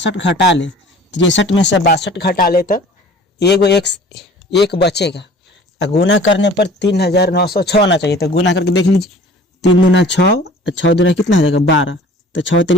घटा ले, 63 में से 62 घटा ले तो एगो एक बचेगा। गुना करने पर 3906 आना चाहिए। तो गुना करके देख लीजिए, 3 दूना 6, 6 दूना कितना हो जाएगा 12, तो 6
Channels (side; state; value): both; normal; correlation 0.47